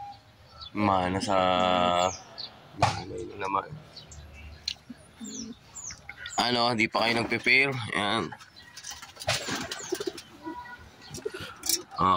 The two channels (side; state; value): both; identical; correlation 1.00